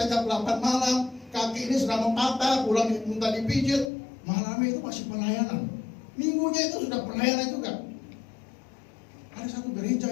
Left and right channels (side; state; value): right; drops out; at 3.9 s